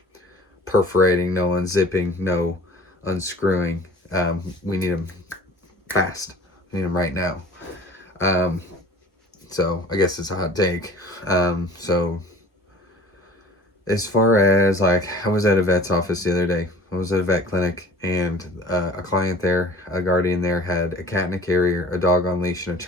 perforating, no unzipping, no unscrewing. We need them fast. We need them right now. Um, so I guess it's a hot take. So as far as like, I was at a vet's office the other day. I was at a vet clinic, and a client there, a guardian there, had a cat in a carrier, a dog on leash, and a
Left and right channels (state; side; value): normal; both; correlation 0.46